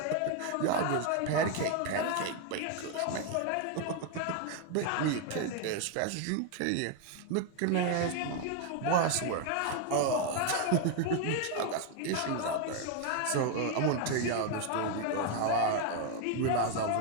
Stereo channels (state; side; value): different; both; correlation 0.01